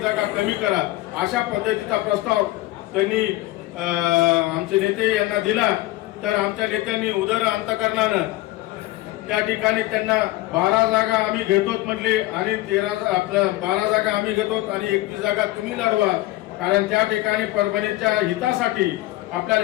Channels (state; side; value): quieter; right; 17.7 dB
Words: जागा कमी करा, अशा पद्धतीचा प्रस्ताव त्यांनी आमचे नेते यांना दिला. तर आमच्या नेत्यांनी उदर अंतकरणानं त्या ठिकाणी त्यांना 12 जागा आम्ही घेतोत म्हटले आणि 12 जागा आम्ही घेतोत आणि 21 जागा तुम्ही लढवा. कारण त्या ठिकाणी परभणीच्या हितासाठी